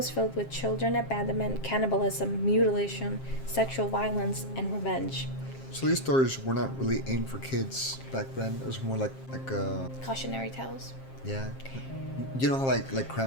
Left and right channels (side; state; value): right; late; 7.5 ms